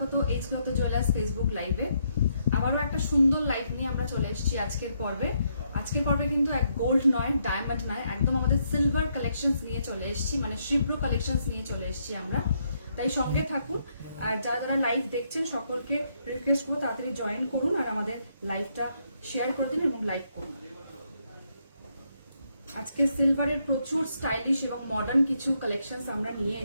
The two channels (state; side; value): inverted; both; correlation -0.76